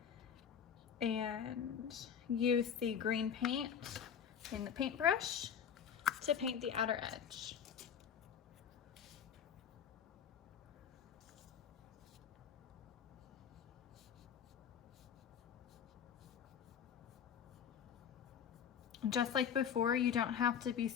And use the green paint in the paintbrush to paint the outer edge. Just like before, you don't have to be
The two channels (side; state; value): right; quieter; 8.1 dB